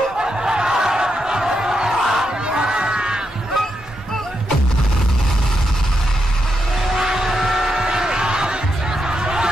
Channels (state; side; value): normal; both; correlation 0.84